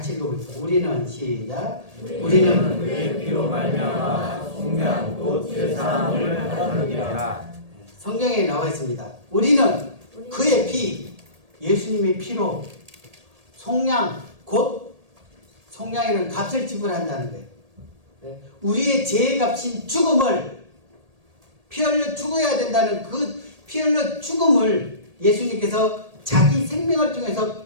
읽어보겠습니다. 우리는 시작. 우리는 그의 피로 말미암아 속량 곧 죄사함을 받았느니라. 성경에 나와 있습니다. 우리는 그의 피, 예수님의 피로 속량, 곧 속량이라는 값을 지불한다는 거예요. 우리의 죄의 값인 죽음을, 피 흘려 죽어야 된다는 그 피 흘려 죽음을 예수님께서 자기 생명을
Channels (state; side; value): late; left; 1.8 ms